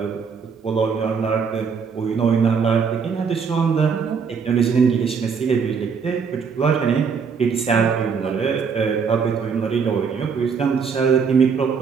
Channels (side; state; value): left; quieter; 6.0 dB